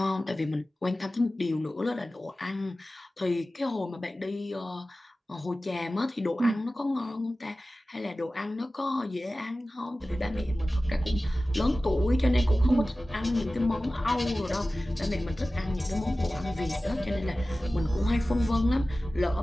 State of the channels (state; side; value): normal; both; correlation 0.96